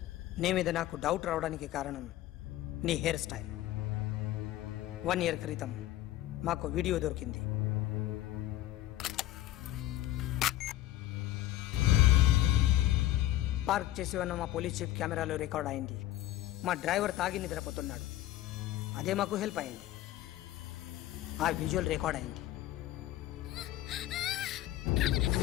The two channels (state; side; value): quieter; right; 14.6 dB